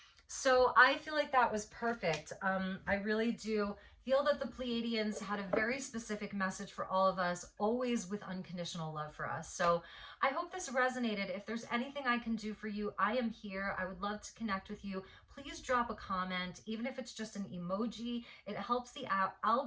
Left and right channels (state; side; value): identical; both; correlation 1.00